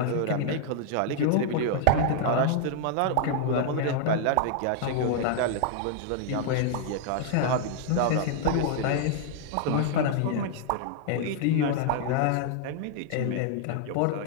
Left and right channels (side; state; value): both; different; correlation 0.00